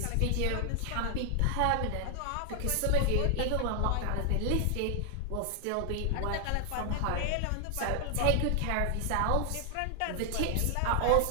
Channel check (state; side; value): different; both; correlation 0.00